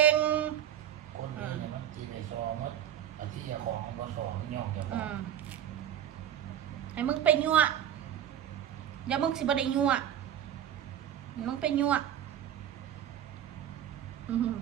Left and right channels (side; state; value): left; quieter; 10.5 dB